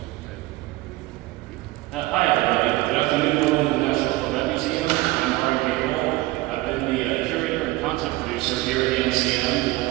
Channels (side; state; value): left; quieter; 19.4 dB